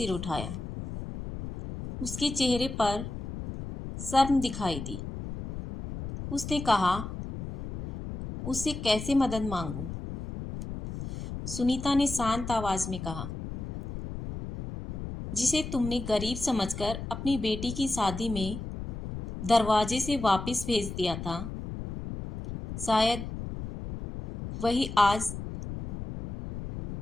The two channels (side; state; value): left; noise; rumble, 8 dB below the sound